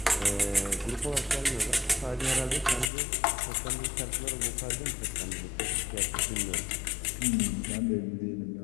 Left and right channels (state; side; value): drops out; right; at 2.9 s